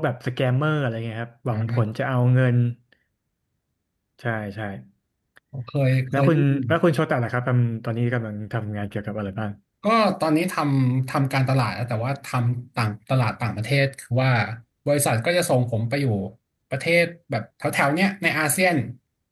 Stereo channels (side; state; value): both; identical; correlation 1.00